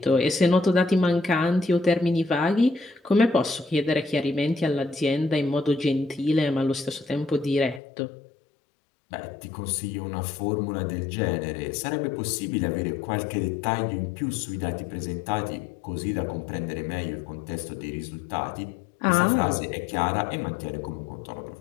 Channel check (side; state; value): right; drops out; at 7.8 s